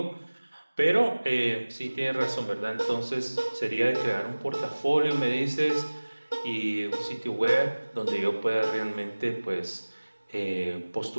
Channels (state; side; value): inverted; both; correlation -1.00